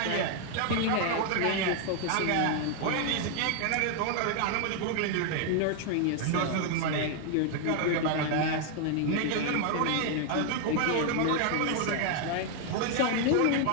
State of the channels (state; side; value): different; both; correlation 0.00